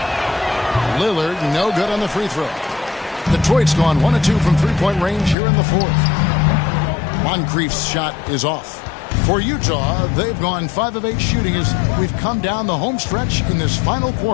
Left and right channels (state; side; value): drops out; right; at 5.4 s